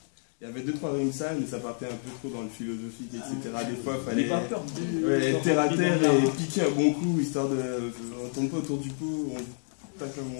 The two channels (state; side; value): silent; right; 59 dB below the other